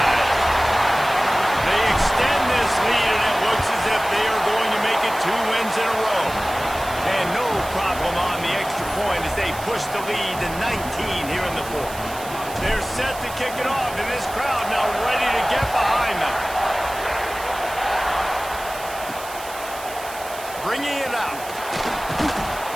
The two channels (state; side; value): noise; right; hiss, 14 dB below the sound